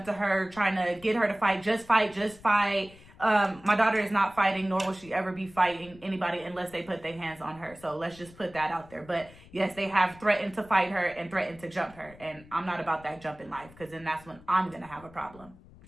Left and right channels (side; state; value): left; noise; rumble, 22 dB below the sound